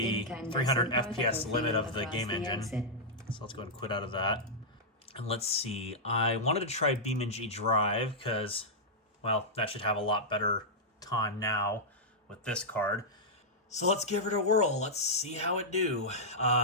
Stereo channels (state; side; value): normal; both; correlation -0.09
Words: 300 FPS limit of the game engine. So let's go ahead and quit out of that. And let's see. I wanted to try EVGA Drive because, well, that should have a lot better time now with this card. So let's give it a whirl. Let's see how it do.